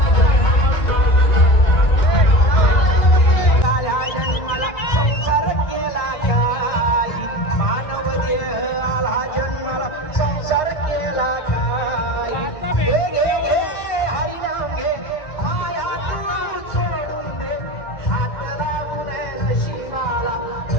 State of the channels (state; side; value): late; right; 1.9 ms